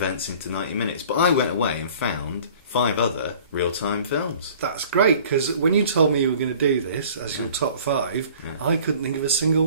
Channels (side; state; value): both; inverted; correlation -0.49